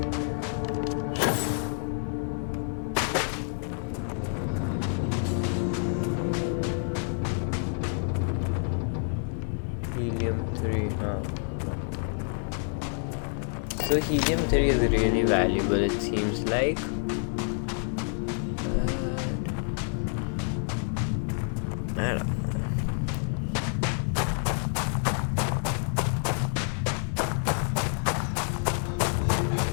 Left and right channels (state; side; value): silent; right; 56 dB below the other